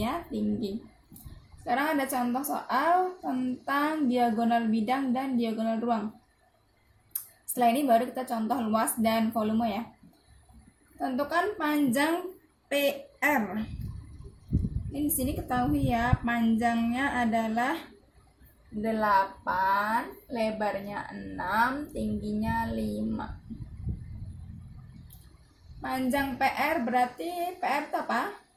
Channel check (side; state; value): both; identical; correlation 1.00